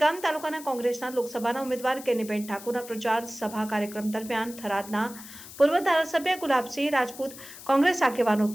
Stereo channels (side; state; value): left; noise; hiss, 15 dB below the sound